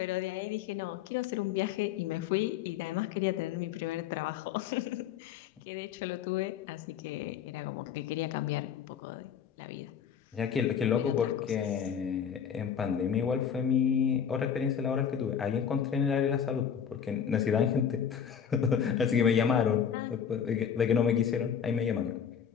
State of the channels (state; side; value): quieter; right; 8.0 dB